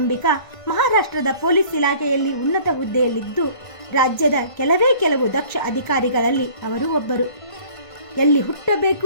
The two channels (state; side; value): late; right; 1.5 ms